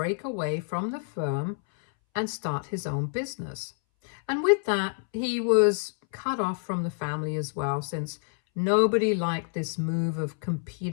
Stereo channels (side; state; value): right; silent; 60 dB below the other